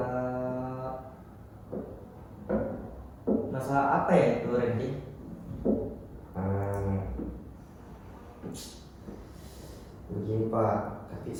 Masalah apa ya itu, Randy? Begini Pak, tapi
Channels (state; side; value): identical; both; correlation 1.00